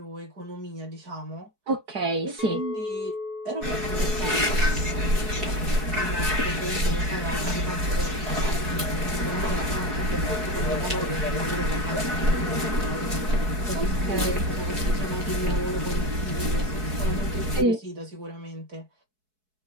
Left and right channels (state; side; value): late; left; 4.6 ms